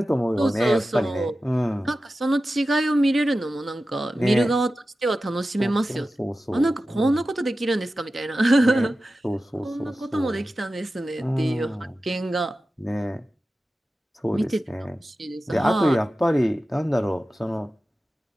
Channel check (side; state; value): both; normal; correlation 0.94